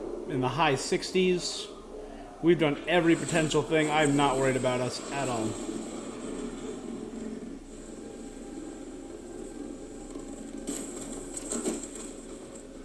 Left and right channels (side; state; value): both; identical; correlation 1.00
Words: in the high 60s. We've done every potential thing. I'm not worried about us at all.